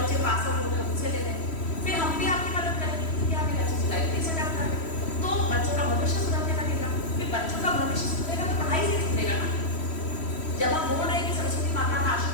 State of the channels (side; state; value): right; late; 3.1 ms